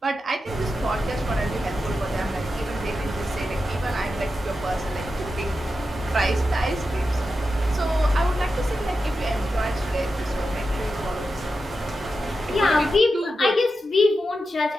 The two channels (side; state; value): both; normal; correlation 0.90